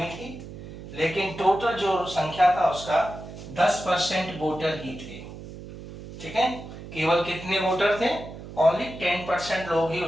थी, लेकिन टोटल जो संख्या था उसका 10% वोटर ही थे। ठीक है, केवल कितने वोटर थे? ओनली 10% लोग ही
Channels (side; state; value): right; noise; hum, 13 dB below the sound